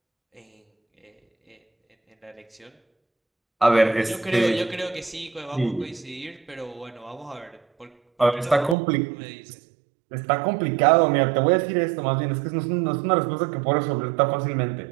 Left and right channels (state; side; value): drops out; left; at 8.8 s